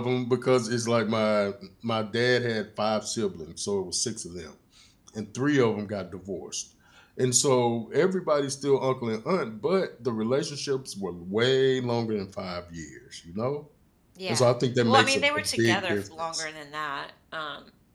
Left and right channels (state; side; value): identical; both; correlation 1.00